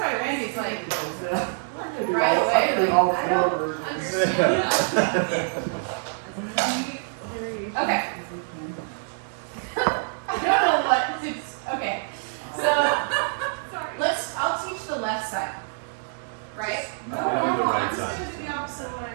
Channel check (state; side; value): silent; left; digital silence